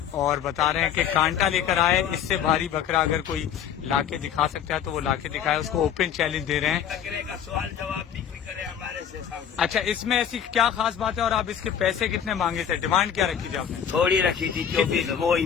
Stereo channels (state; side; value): quieter; right; 8.9 dB